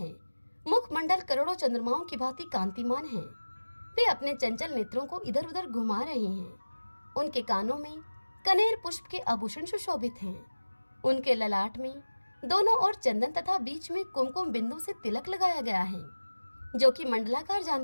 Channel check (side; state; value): both; inverted; correlation -1.00